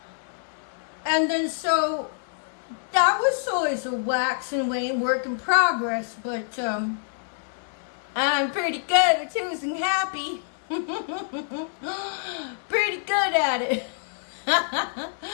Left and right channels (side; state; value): right; silent; 61 dB below the other